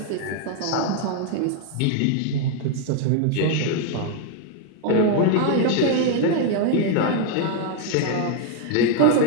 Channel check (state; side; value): different; both; correlation 0.00